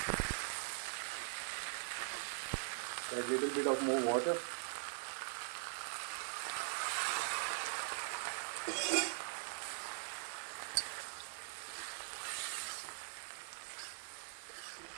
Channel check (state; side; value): silent; left; digital silence